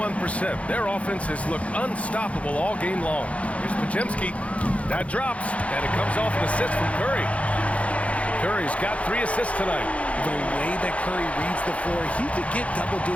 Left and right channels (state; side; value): late; right; 0.064 ms